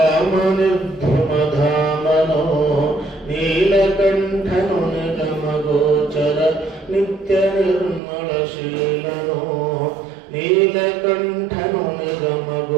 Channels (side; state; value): left; drops out; at 8.0 s